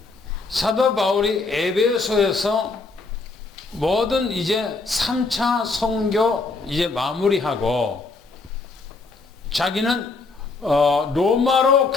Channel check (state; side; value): quieter; right; 3.9 dB